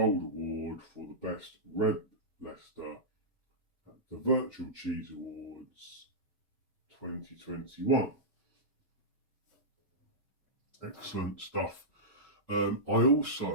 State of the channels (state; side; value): normal; both; correlation -0.13